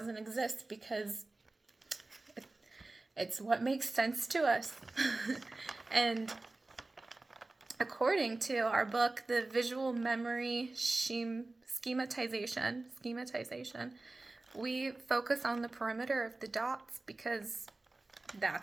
exist because it's what makes sense to us. And according to our book, the visual memory schematization, we focus on the perimeter of the dots because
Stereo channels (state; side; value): quieter; left; 3.1 dB